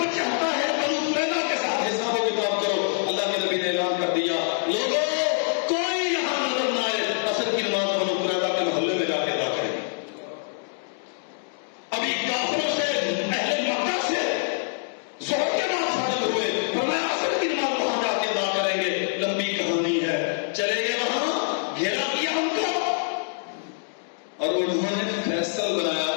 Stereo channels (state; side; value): silent; right; digital silence